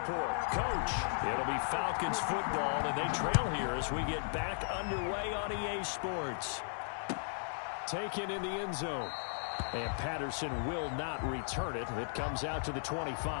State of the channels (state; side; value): silent; right; digital silence